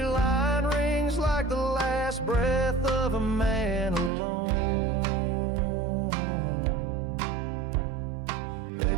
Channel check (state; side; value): drops out; left; at 4.1 s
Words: line rings like the last breath of a man alone.